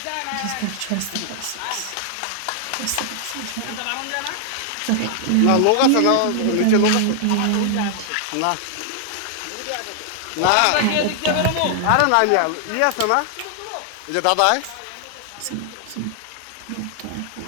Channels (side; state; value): both; different; correlation 0.00